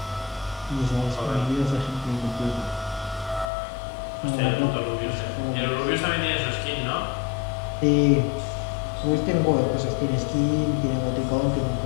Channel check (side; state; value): right; drops out; at 3.5 s